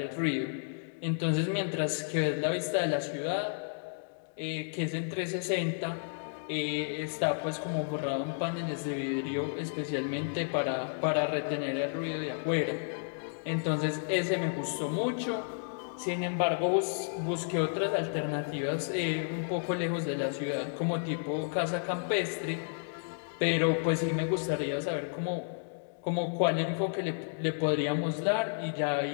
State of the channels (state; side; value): silent; right; digital silence